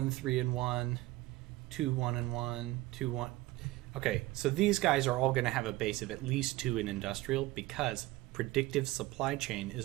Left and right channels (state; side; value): quieter; left; 18.3 dB